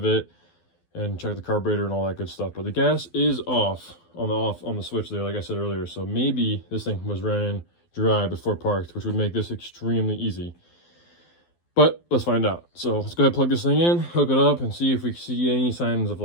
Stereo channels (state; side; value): late; right; 12 ms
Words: it and check the carburetor and all that good stuff. But the gas is off on the switch there, like I said earlier. So maybe this thing was ran dry before parked, which would make this extremely easy. But let's find out. So let's go ahead and plug this thing in, hook it up, and see if we see any signs of